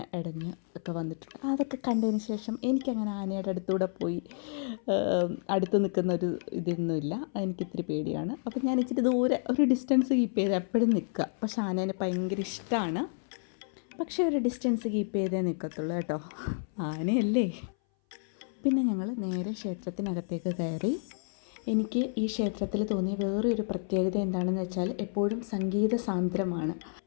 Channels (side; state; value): right; silent; 58 dB below the other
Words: ഇടഞ്ഞ് ഒക്കെ വന്നിട്ടുണ്ട്. അതൊക്കെ കണ്ടതിന് ശേഷം എനിക്കങ്ങനെ ആനയുടെ അടുത്തൂടെ പോയി അടുത്ത് നിൽക്കുന്ന ഒരു ഇതൊന്നുമില്ല. എനിക്കിത്തിരി പേടിയാണ്. അപ്പം ഞാൻ ഇച്ചിരി ദൂരെ ഒരു ഡിസ്റ്റൻസ് കീപ്പ് ചെയ്ത് എപ്പോഴും നിൽക്കുക. പക്ഷെ ആനേനെ ഭയങ്കര ഇഷ്ടമാണ്. പക്ഷേ ഒരു ഡിസ്റ്റൻസ് കീപ്പ് ചെയ്തേ നിൽക്കത്തുള്ളൂ കേട്ടോ, ആനയല്ലേ. പിന്നെ ഞങ്ങൾ നേരെ ക്ഷേത്രത്തിനകത്തേക്ക് കയറി. എനിക്ക് ഈ ക്ഷേത്രത്തിൽ തോന്നിയ വേറൊരു പ്രത്യേകത എന്താണെന്ന് വെച്ചാൽ എപ്പോഴും സംഗീത സാന്ദ്രമാണ്.